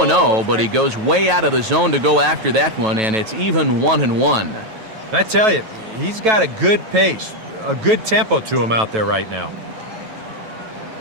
but he goes way out of the zone to go after that one, and it's even 1-1. I tell you, he's got a good pace, a good tempo to him out there right now.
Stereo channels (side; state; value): left; late; 9.2 ms